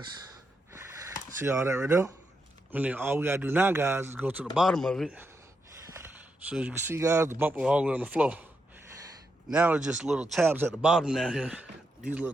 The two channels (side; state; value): both; normal; correlation 0.83